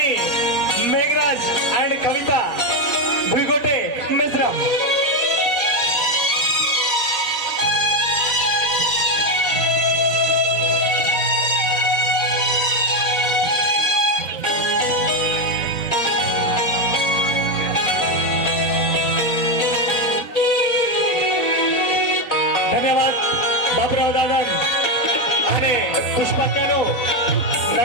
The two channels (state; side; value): late; right; 4.1 ms